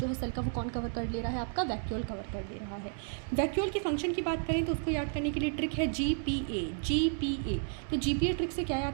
है सेल का वो कौन कवर कर ले रहा है, आपका वैक्यूल कवर कर ले रहा है। वैक्यूल की फंक्शन की बात करें तो उसको याद करने के लिए ट्रिक है GPA। तो GPA ट्रिक से क्या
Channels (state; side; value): silent; left; 56 dB below the other